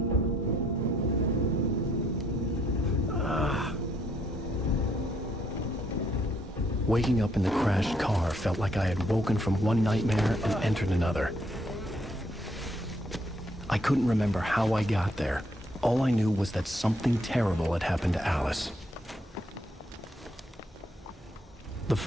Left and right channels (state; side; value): normal; both; correlation 0.71